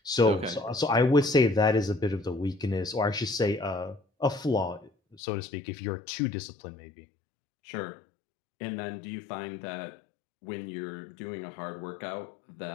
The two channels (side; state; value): right; drops out; at 5.2 s